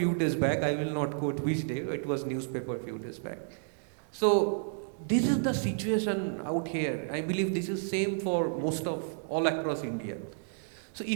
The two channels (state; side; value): silent; left; digital silence